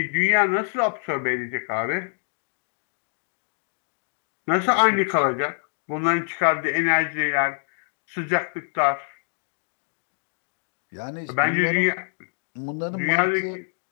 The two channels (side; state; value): right; silent; digital silence